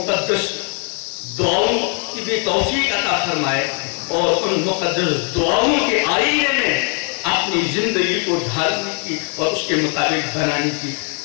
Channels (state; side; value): quieter; right; 39.2 dB